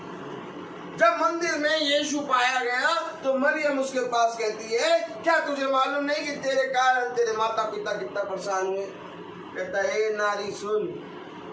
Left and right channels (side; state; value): both; identical; correlation 1.00